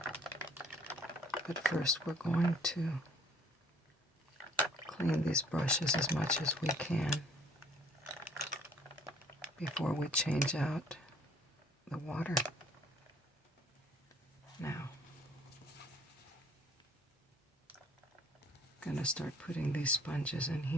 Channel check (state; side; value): normal; both; correlation 0.58